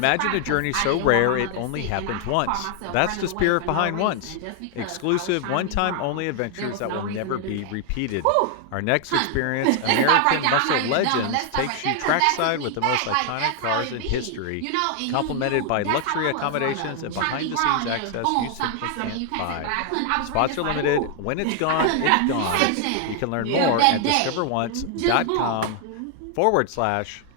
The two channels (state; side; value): different; both; correlation 0.00